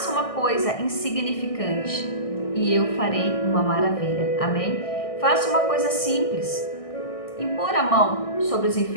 uma coisa insignificante e eu farei uma maravilha, amém? Faça uma coisa simples. Impor a mão sobre os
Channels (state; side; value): late; right; 1.6 ms